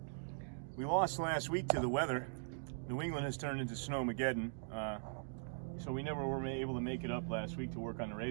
We lost last week to the weather. New England has turned into Snowmageddon, so we never were able to make it up last week to work on the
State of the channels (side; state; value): left; silent; digital silence